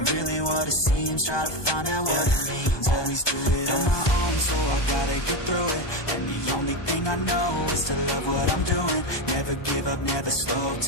really what it seems. Try to find out what it means. Always do it on my own, so I gotta get through it. And the only thing I know is to love what I'm doing. Never give up, never slow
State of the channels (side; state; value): right; late; 1.2 ms